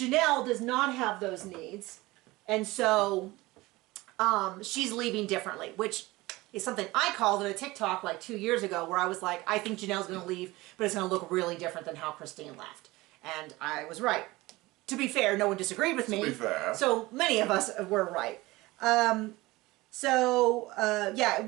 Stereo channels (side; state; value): left; quieter; 20.4 dB